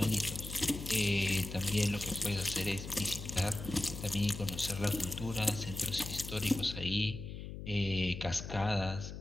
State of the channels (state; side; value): noise; left; hum, 9 dB below the sound